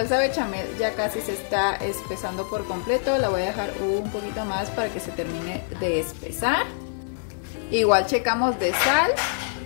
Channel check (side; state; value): right; silent; 62 dB below the other